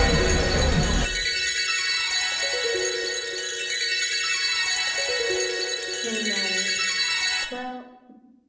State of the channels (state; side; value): identical; both; correlation 1.00